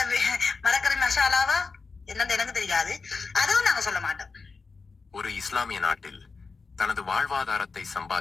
மரக்கறி மசாலாவா, என்னன்னு எனக்கு தெரியாது. அதுவும் நாங்க சொல்ல மாட்டோம். ஒரு இஸ்லாமிய நாட்டில் தனது வாழ்வாதாரத்தை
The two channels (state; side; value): quieter; right; 4.5 dB